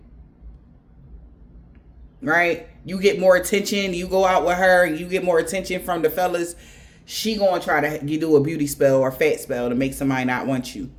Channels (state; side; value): identical; both; correlation 1.00